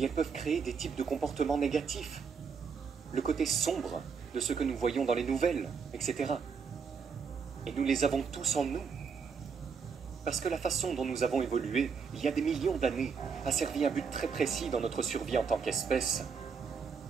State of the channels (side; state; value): left; quieter; 5.9 dB